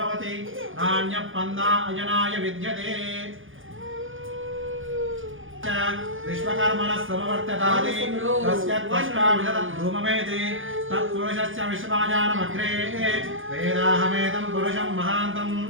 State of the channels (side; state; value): left; late; 0.58 ms